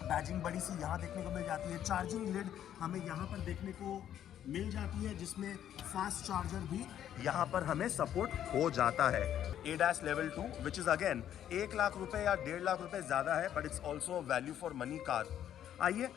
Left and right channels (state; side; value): quieter; right; 10.6 dB